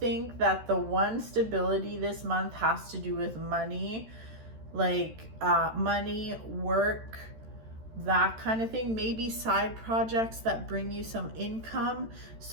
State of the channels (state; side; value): late; left; 13 ms